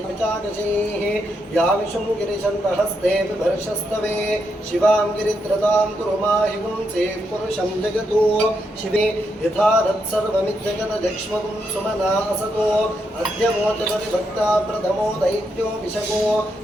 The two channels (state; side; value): normal; both; correlation 0.81